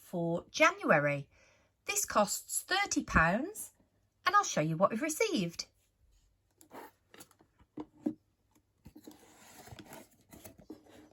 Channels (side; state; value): both; identical; correlation 1.00